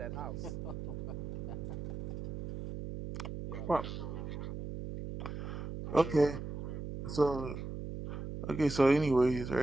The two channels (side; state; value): right; noise; hum, 6 dB below the sound